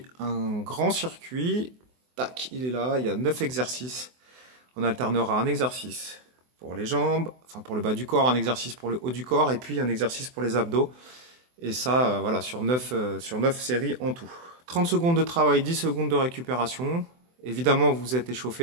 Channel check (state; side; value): late; left; 24 ms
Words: un grand circuit. Tac, il est là, il y a 9 exercices. On alternera un exercice pour les jambes, enfin pour le bas du corps, un exercice pour le haut du corps et puis un exercice pour les abdos. Et ça, voilà, sur 9 séries en tout. 30 secondes de travail, 10 secondes de récupération. Évidemment, vous êtes